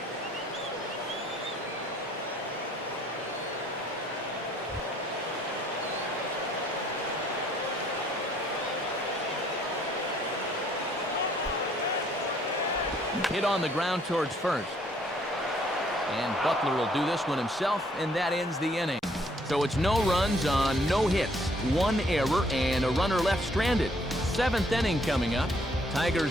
Hit on the ground towards first. And Butler will do this one himself, and that ends the inning. So it's no runs on no hits, 1 error, and a runner left stranded. 7th inning coming up.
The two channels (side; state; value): both; normal; correlation 0.64